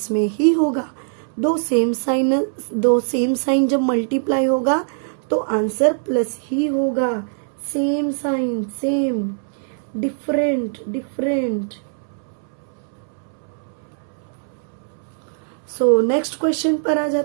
में ही होगा. दो सेम साइन जब मल्टीप्लाई होगा तो आंसर प्लस ही होगा. Same sign same, different different. So next question पर आ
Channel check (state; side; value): silent; left; 64 dB below the other